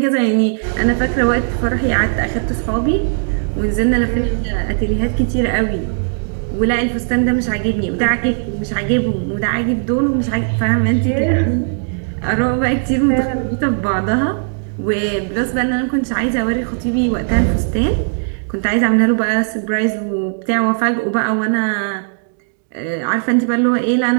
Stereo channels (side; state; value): left; silent; digital silence